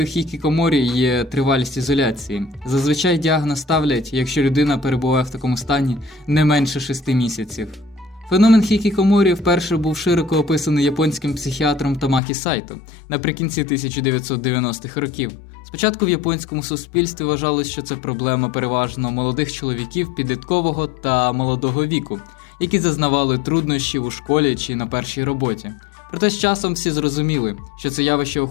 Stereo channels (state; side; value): drops out; right; at 12.2 s